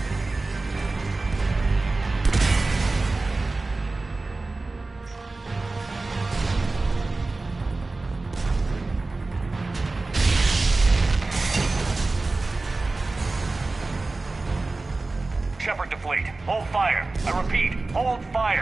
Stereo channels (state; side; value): quieter; left; 3.4 dB